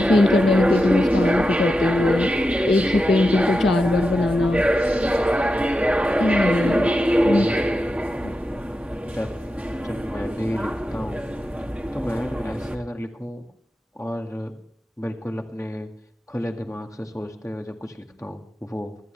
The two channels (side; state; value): both; normal; correlation 0.89